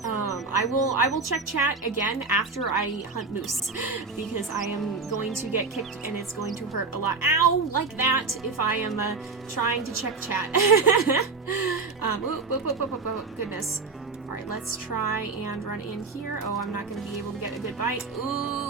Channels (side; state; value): left; quieter; 4.3 dB